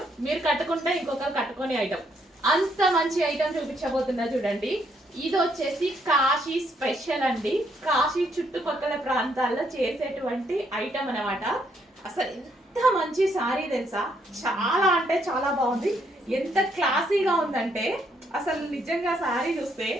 మీరు కట్టుకుంటే ఇంకొకరు కట్టుకొని ఐటమ్. అంత మంచి ఐటమ్ చూపించబోతున్నా. చూడండి, ఇది వచ్చేసి కాశీ స్పెషల్ అండి. కాశీ చుట్టుపక్కల ప్రాంతాల్లో చేసేటువంటి ఐటమ్ అనమాట. అసలు ఎంత మంచి సారీ తెలుసా, చాలా అంటే చాలా బాగుంది. ఎంత క్లాసీగా ఉందంటే అసలు నిజంగా సారీ చూస్తే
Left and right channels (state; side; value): normal; both; correlation 0.72